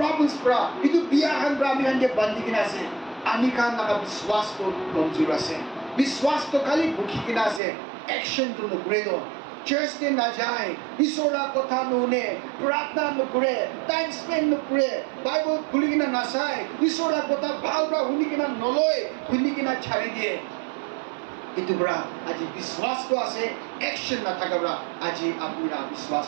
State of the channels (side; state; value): left; drops out; at 7.6 s